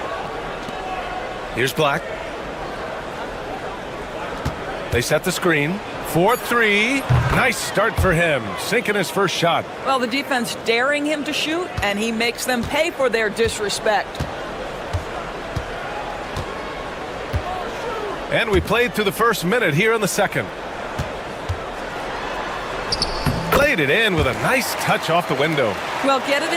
Here's Black. They set the screen. 4-3. Nice start for him. Sinking his first shot. Well, the defense daring him to shoot, and he makes them pay for their disrespect. And we played through the first minute here in the second. Played it in with a nice touch off the window. Well, get it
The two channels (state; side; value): identical; both; correlation 1.00